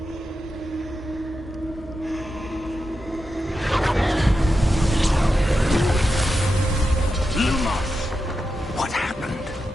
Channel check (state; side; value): normal; both; correlation 0.89